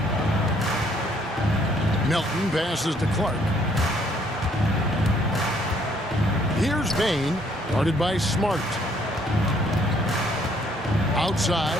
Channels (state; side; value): normal; both; correlation 0.65